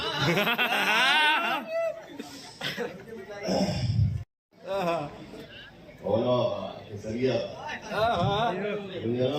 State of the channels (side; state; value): both; identical; correlation 1.00